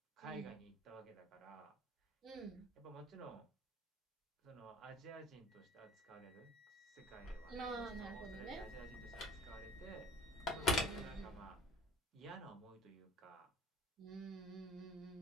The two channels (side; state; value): both; normal; correlation 0.48